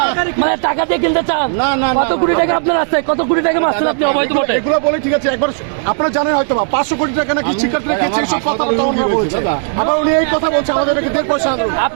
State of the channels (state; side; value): silent; left; digital silence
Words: মানে টাকা দিয়ে কিনতে চান? না, কত কোটি টাকা আপনার আছে? কত কোটি টাকা মারছেন আপনি অবৈধ ভোটে? এগুলো বলে ঠিক আছে, একবার আপনারা জানেন হয়তো 500 কোটি টাকা নাকি শিক্ষার্থীরা খেয়েছে, সব কথা বলছে। আবার উনি এই কথা বলছে আমাদেরকে 1.5 পয়সা